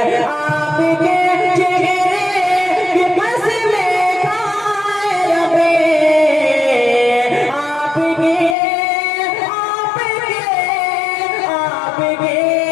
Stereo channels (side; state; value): right; drops out; at 8.6 s